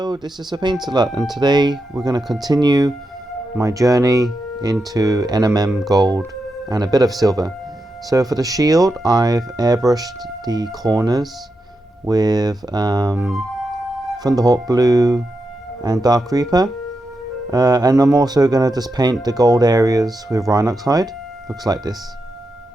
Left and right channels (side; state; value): both; normal; correlation 0.87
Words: this is a Paint-A-Lot, and today we're going to continue my journey into NMM gold and a bit of silver. So for the shield, I've airbrushed the corners with Thunderhawk Blue and Dark Reaper, and I'm also going to just paint the gold areas with Rhinox Hide. Looks like this.